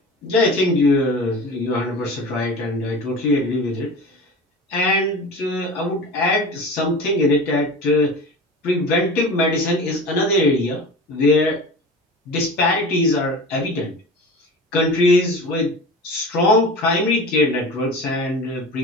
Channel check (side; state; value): both; normal; correlation 0.34